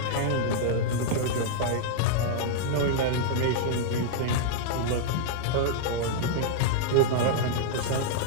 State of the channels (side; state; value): both; different; correlation -0.01